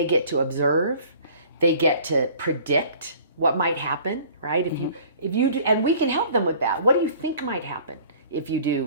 get to observe, they get to predict what might happen, right? If you do, and we can help them with that. What do you think might happen if you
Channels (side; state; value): both; inverted; correlation -0.50